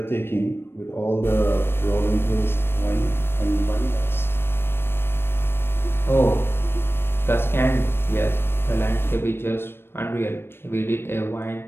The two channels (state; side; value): late; right; 0.11 ms